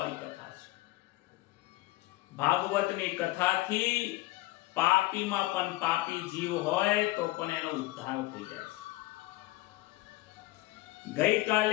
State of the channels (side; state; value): right; quieter; 18.8 dB